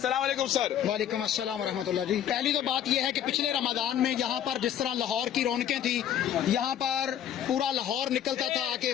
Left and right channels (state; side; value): quieter; right; 10.1 dB